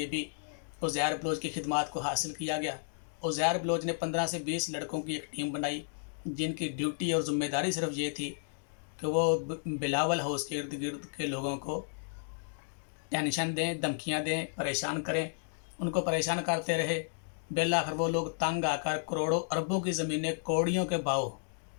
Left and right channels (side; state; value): right; silent; digital silence